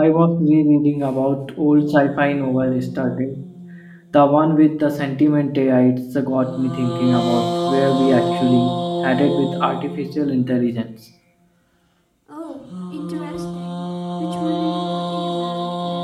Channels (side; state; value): both; identical; correlation 1.00